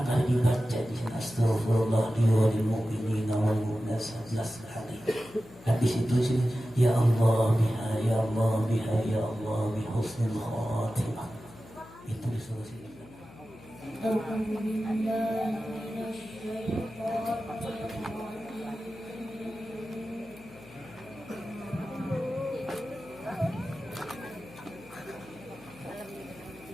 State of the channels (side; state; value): left; noise; hum, 21 dB below the sound